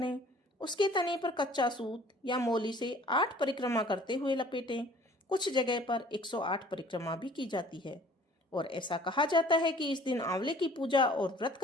उसके तने पर कच्चा सूत या मोली से 8 परिक्रमा करते हुए लपेटें। कुछ जगह पर 108 परिक्रमा भी की जाती है। और ऐसा कहा जाता है कि इस दिन आंवले की पूजा और व्रत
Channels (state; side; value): normal; both; correlation 0.52